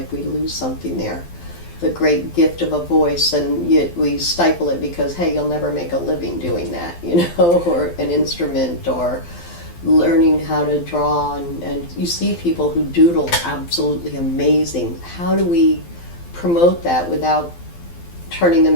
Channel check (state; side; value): late; right; 12 ms